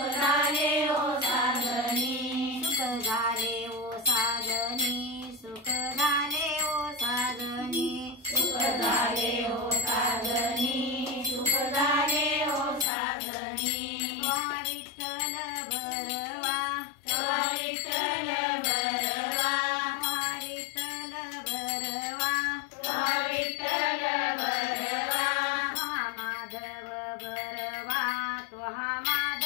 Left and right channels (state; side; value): drops out; right; at 12.9 s